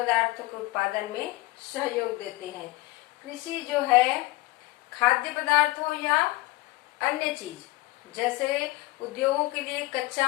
के उत्पादन में सहयोग देते हैं। कृषि जो है खाद्य पदार्थ हो या अन्य चीज, जैसे उद्योगों के लिए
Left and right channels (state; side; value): quieter; right; 20.9 dB